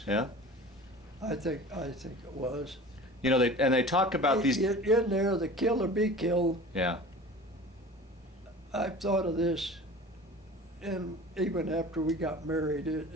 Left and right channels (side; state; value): both; normal; correlation 0.40